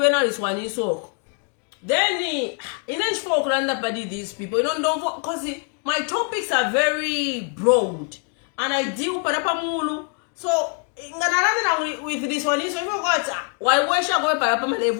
is one in so. Then in each folk randa padi these people, you don't because my topics are very broad and I deal parapamulu. So with this one, so you got why should I go parapama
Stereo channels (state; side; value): quieter; right; 40.0 dB